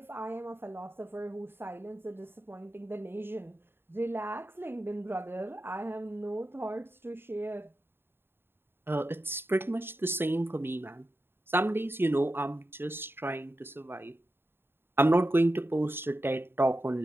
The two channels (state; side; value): late; left; 0.11 ms